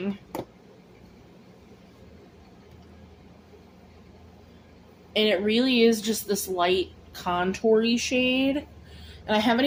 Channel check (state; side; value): identical; both; correlation 1.00